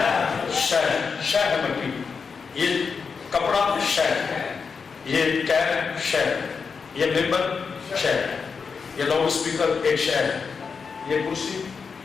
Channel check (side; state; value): right; quieter; 5.5 dB